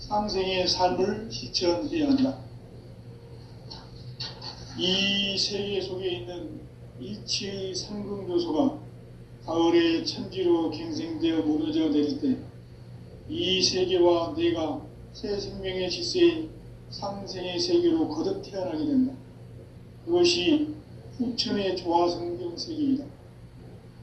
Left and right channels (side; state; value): both; identical; correlation 1.00